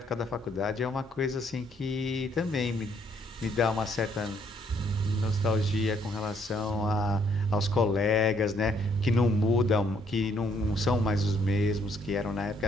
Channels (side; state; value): both; normal; correlation 0.68